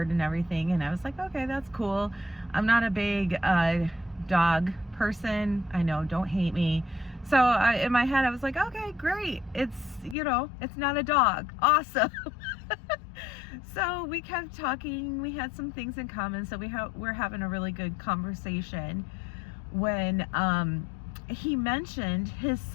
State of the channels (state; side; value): drops out; right; at 10.2 s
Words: and everything, and I was like, okay, that's cool. I'm not a big dog person. I know, don't hate me. So in my head I was like, okay, great. It's not a dog. Awesome. So we kept talking. We had some things in common, so we're having a really good conversation when he mentioned his